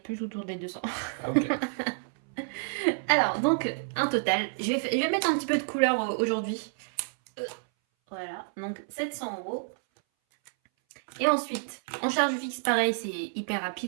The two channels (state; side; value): silent; left; 58 dB below the other